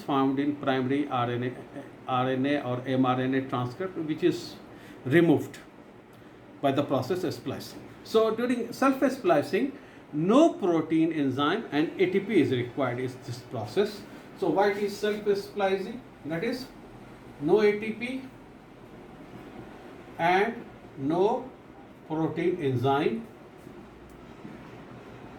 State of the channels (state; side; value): identical; both; correlation 1.00